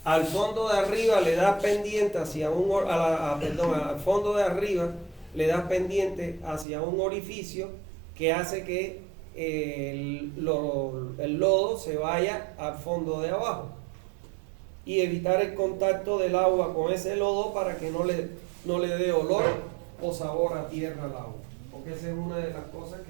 al fondo de arriba le das pendiente hacia al fondo de arriba le das pendiente hacia un orificio que hace que el lodo se vaya al fondo de abajo y evitar el contacto del agua con ese lodo para que no le dé olor o sabor a tierra al agua, porque esa es una de las cosas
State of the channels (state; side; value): drops out; left; at 6.7 s